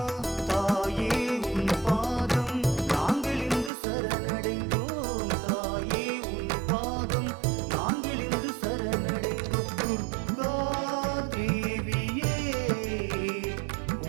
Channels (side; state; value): left; drops out; at 3.7 s